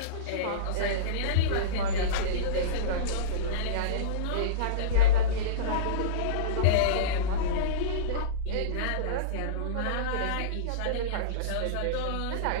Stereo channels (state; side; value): different; both; correlation -0.05